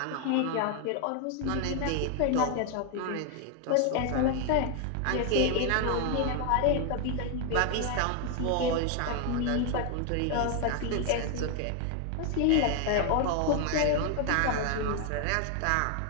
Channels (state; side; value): different; both; correlation 0.00